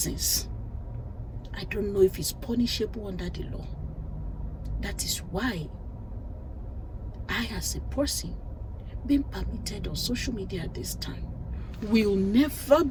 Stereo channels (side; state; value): both; identical; correlation 1.00